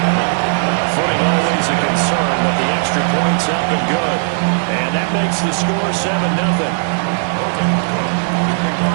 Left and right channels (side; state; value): left; silent; digital silence